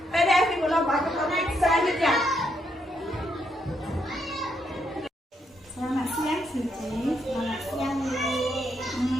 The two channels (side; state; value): both; normal; correlation 0.77